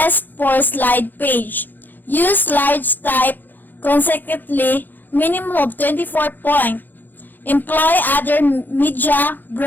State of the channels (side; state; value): right; late; 0.087 ms